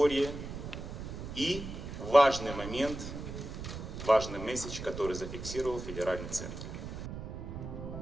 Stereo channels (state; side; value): noise; right; rumble, 8 dB below the sound